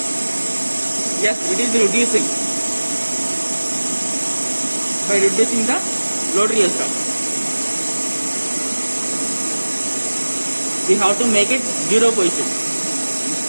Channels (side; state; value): both; inverted; correlation -1.00